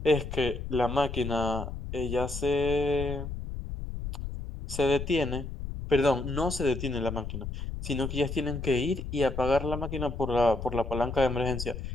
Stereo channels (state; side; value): noise; left; rumble, 7 dB below the sound